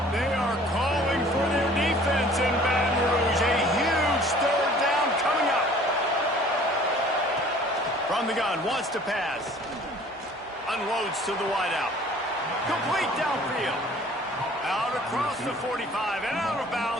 They are calling for their defense in Baton Rouge. A huge third down coming up. From the gun, wants to pass. Unloads to the wideout. Complete downfield. Out across the 45 and out of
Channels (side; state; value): both; normal; correlation 0.51